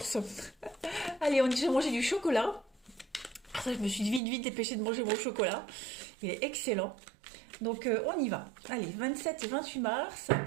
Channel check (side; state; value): left; drops out; at 4.2 s